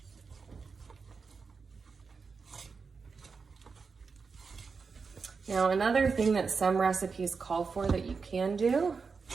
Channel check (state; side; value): quieter; left; 5.0 dB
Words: Now, another thing that some recipes call for that you can do